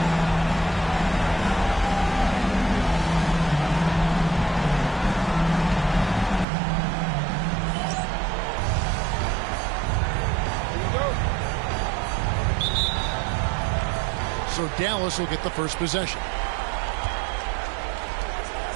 So Dallas will get the first possession.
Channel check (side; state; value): left; drops out; at 6.5 s